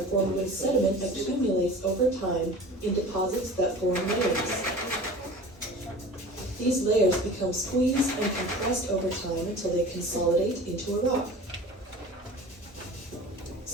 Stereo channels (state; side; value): normal; both; correlation 0.40